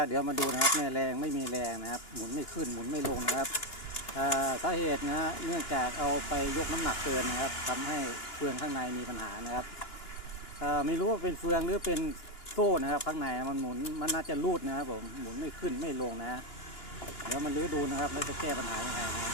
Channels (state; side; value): late; right; 2.9 ms